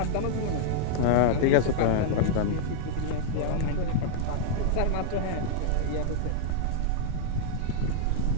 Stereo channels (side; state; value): both; different; correlation -0.01